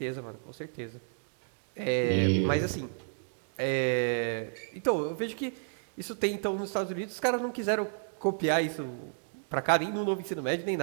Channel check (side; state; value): left; silent; digital silence